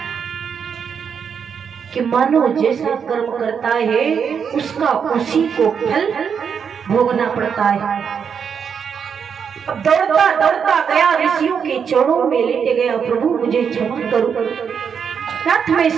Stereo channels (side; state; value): left; quieter; 6.9 dB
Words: कि मानो जैसा कर्म करता है उसका उसी को फल भोगना पड़ता है। अब दौड़ता दौड़ता गया, ऋषियों के चरणों में लेटे गया, प्रभु मुझे क्षमा करो। नाथ मैं